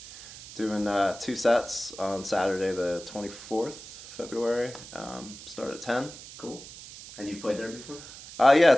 Doing 2 sets on Saturday the 24th February. Start at 10. Cool. And you've played there before? Yeah,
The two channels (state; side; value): noise; right; hiss, 15 dB below the sound